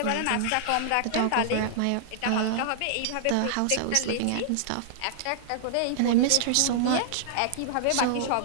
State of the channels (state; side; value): different; both; correlation -0.01